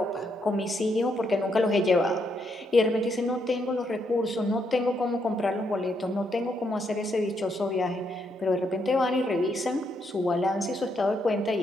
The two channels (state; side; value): normal; both; correlation 0.77